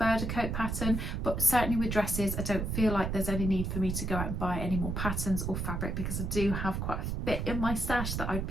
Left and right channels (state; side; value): noise; right; rumble, 2 dB below the sound